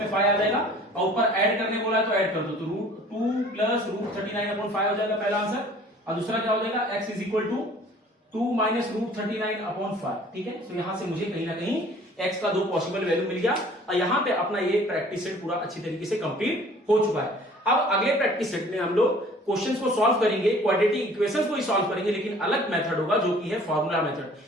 5 आ जाएगा, और ऊपर ऐड करने बोला है तो ऐड कर दो, तो √2 प्लस √39/5 हो जाएगा पहला आंसर, और दूसरा क्या हो जाएगा x is equal to 2 minus √39/5। ठीक है, तो यहां से मुझे कहीं ना कहीं x का दो पॉसिबल वैल्यू मिल गया, और यहां पे अपना ये प्रैक्टिस सेट पूरा अच्छी तरीके से कंप्लीट हो चुका है। अब अगले प्रैक्टिस सेट में हम लोग क्वेश्चंस को सॉल्व करेंगे, क्वाड्रेटिक इक्वेशंस को ही सॉल्व करेंगे, लेकिन अलग मेथड होगा जो कि है फॉर्मूला मेथड,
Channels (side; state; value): both; normal; correlation 0.51